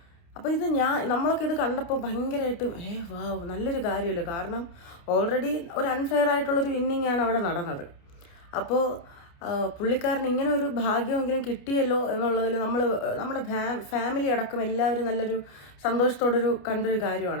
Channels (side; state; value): right; late; 29 ms